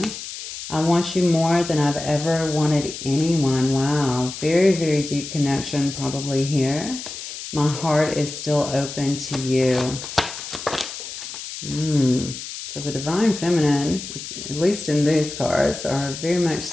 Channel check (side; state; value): left; noise; hiss, 9 dB below the sound